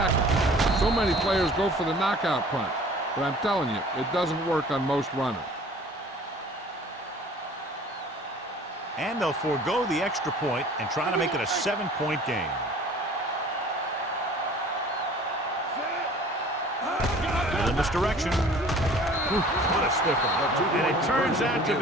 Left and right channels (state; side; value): normal; both; correlation 0.48